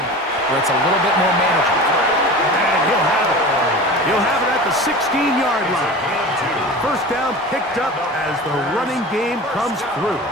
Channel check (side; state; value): both; normal; correlation 0.35